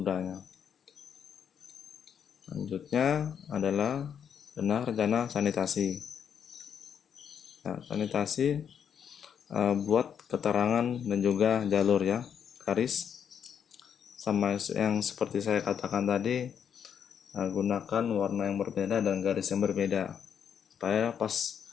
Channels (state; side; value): quieter; right; 8.0 dB